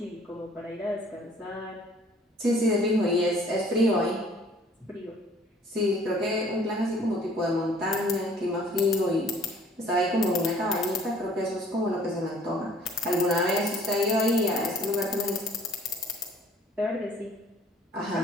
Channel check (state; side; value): normal; both; correlation 0.55